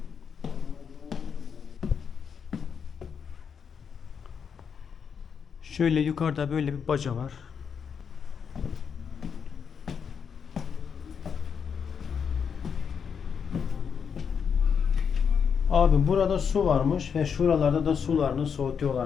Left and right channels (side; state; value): right; quieter; 6.8 dB